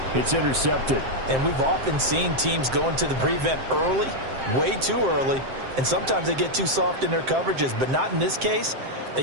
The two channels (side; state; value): left; late; 7.6 ms